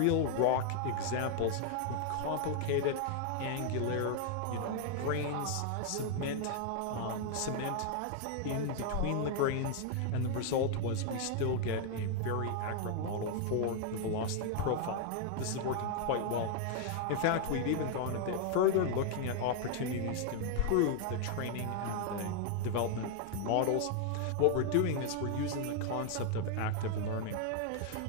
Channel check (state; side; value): different; both; correlation 0.00